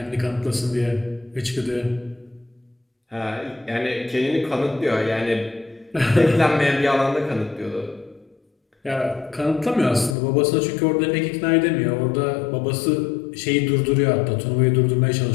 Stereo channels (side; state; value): right; drops out; at 10.2 s